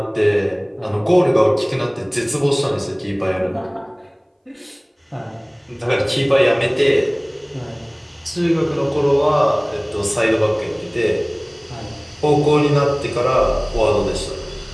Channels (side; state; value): both; identical; correlation 1.00